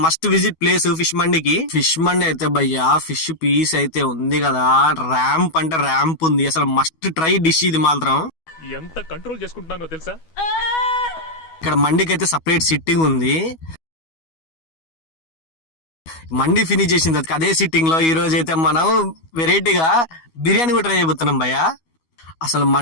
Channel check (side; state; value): right; late; 12 ms